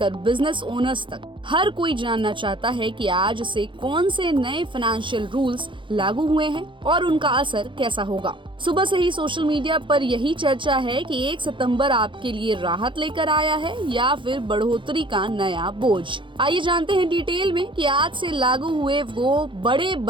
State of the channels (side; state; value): left; late; 0.24 ms